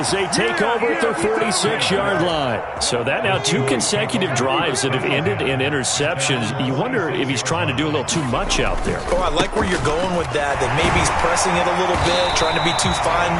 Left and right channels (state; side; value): identical; both; correlation 1.00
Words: they take over at their 46-yard line. So that now 2 consecutive drives that have ended in interceptions. You wonder if he's trying to do a little too much out there. Oh, I like where you're going with that maybe he's pressing it a little bit, trying to be too fine